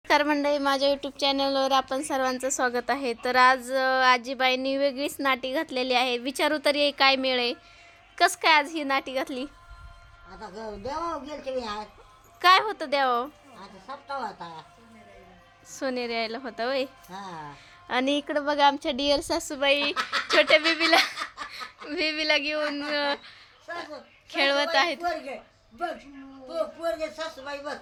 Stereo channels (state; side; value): identical; both; correlation 1.00